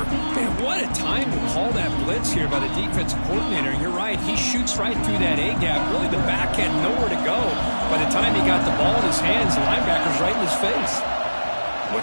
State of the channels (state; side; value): inverted; both; correlation -1.00